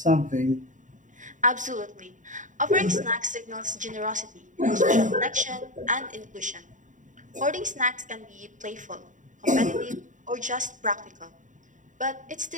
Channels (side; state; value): left; late; 0.37 ms